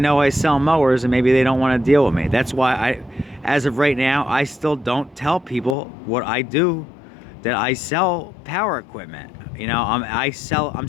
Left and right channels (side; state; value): right; drops out; at 5.8 s